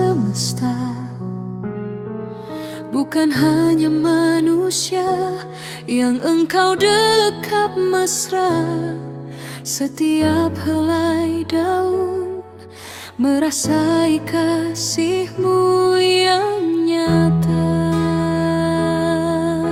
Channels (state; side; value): identical; both; correlation 1.00